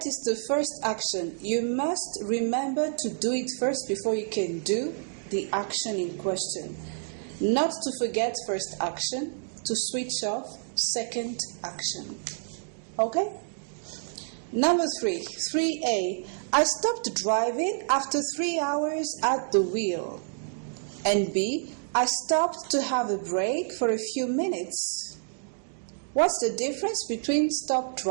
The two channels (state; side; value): silent; left; digital silence